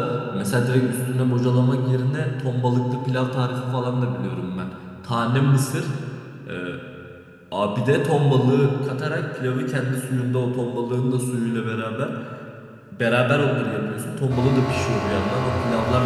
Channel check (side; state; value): both; identical; correlation 1.00